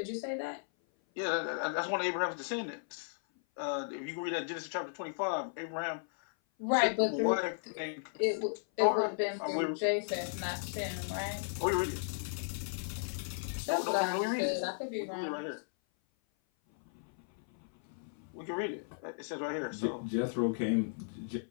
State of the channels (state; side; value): silent; right; 54 dB below the other